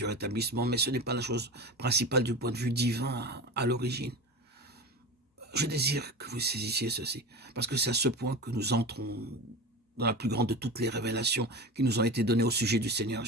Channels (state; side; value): normal; both; correlation 0.28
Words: rétablissement, mais ce n'est pas la chose principale du point de vue divin à l'origine. Je désire que vous saisissiez ceci, parce que c'est à ce point que nous entrons dans la plus grande de toutes les révélations qui nous ont été données au sujet du Seigneur